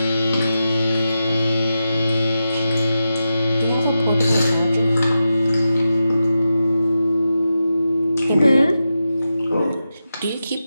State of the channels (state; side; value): inverted; both; correlation -0.90